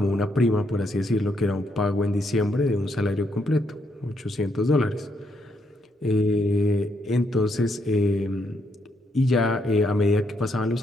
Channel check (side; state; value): both; normal; correlation 0.76